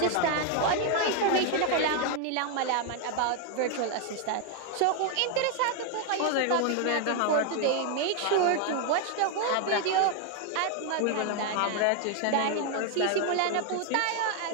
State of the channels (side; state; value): both; different; correlation 0.01